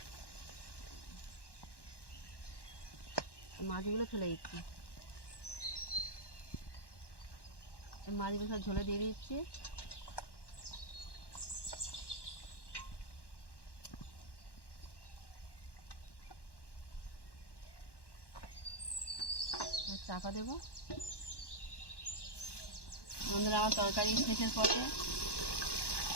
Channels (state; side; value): late; right; 1.1 ms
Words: মাছগুলো ফেলে দিচ্ছি, মাছগুলো সব ঝোলে দিয়ে দিচ্ছি। চাপা দেবো। বন্ধুরা আমার তরকারি শেষের পথে,